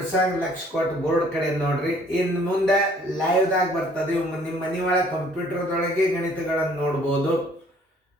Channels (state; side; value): normal; both; correlation 0.59